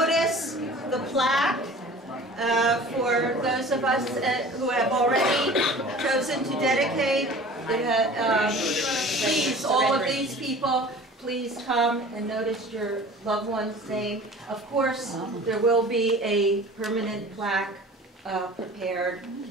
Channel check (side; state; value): both; normal; correlation 0.43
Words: the plaque for those of us who have already chosen to dedicate. Please, all of these people, please come and notice your loved one's name. Of course, there will be a permanent plaque prepared